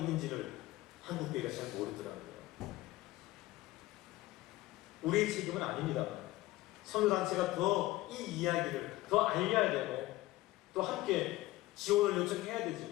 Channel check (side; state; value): right; quieter; 17.7 dB